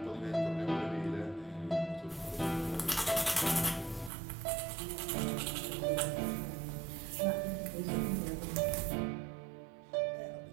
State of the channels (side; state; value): left; drops out; at 4.1 s